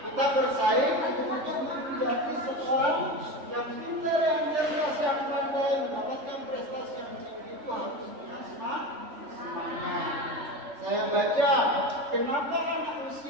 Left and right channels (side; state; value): left; late; 3.4 ms